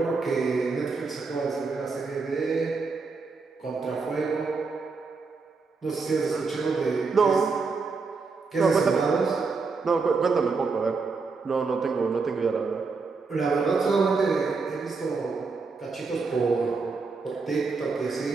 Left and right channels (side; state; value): left; quieter; 4.4 dB